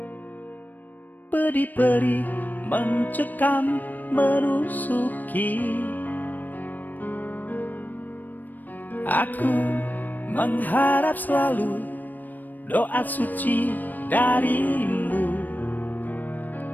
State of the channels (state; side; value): late; right; 0.087 ms